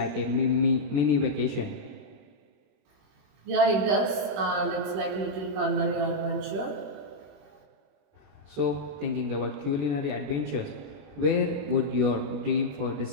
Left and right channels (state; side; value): late; left; 21 ms